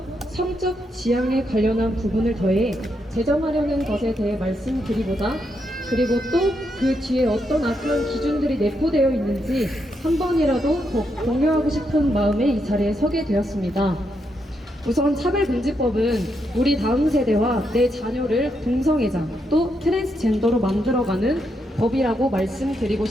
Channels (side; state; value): both; normal; correlation 0.81